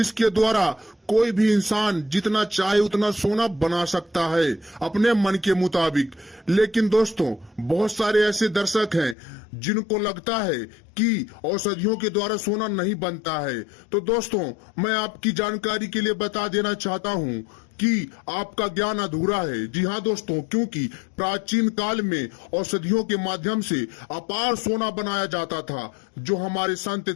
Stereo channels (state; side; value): drops out; right; at 9.2 s